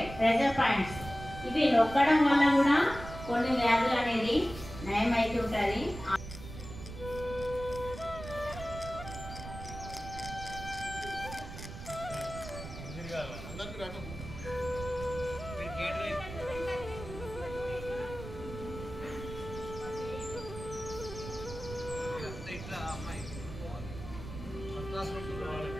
ప్రెజర్ పాయింట్స్. ఇవి నొక్కడం వల్ల కూడా కొన్ని వ్యాధులు అనేది నయం అవుతుంటుంది. అందరికీ రాటం. ఇట్లా అమ్మాయి ఫస్ట్ క్లాస్ చూడాలి,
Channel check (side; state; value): right; noise; rumble, 11 dB below the sound